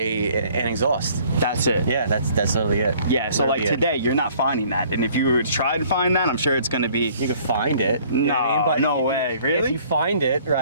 exhaust. That's it. Yeah, that's literally it. Yeah, so Literally like today, you're not finding that. And if you were to try to find that, I'm sure it's going to be... You can find it. You know what I mean? No, But no way. Really? If you find it,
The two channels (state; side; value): inverted; both; correlation -0.57